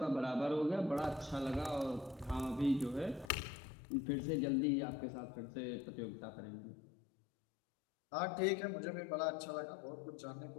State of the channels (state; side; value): drops out; right; at 3.3 s